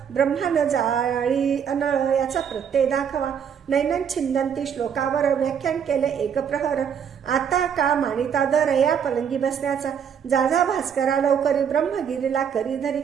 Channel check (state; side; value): quieter; left; 7.8 dB